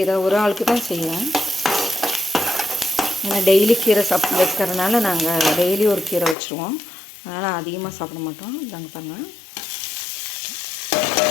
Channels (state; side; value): drops out; right; at 6.4 s